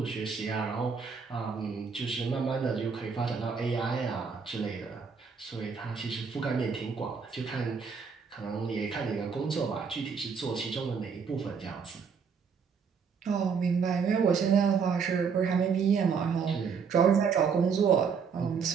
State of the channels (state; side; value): quieter; left; 6.0 dB